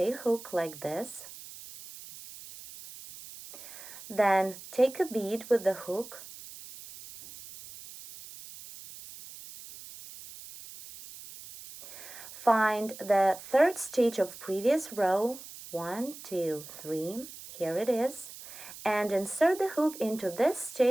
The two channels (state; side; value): noise; right; hiss, 15 dB below the sound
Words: hook like this. Then take a bead with the hook. Find the third stitch of previous row, 1, 2, 3, here it is, and insert the hook into this